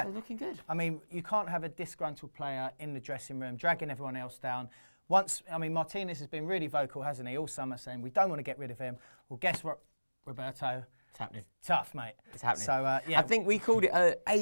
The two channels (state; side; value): inverted; both; correlation -1.00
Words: They're looking good. I mean, you can't have a disgruntled player in the dressing room, dragging everyone else down. Martinez has been really vocal, hasn't he, all summer, saying we don't want to get rid of him. Well, guess what, Roberto? It's happening. Tough, mate. It's happening. So, yeah. I think we called it